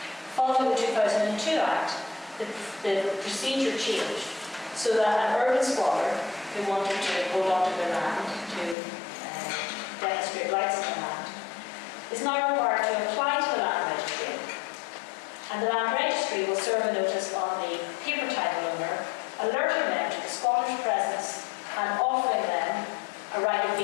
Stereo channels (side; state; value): right; drops out; at 8.8 s